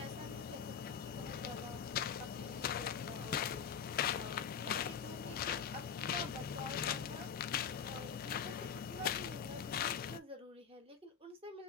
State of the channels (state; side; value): quieter; right; 7.4 dB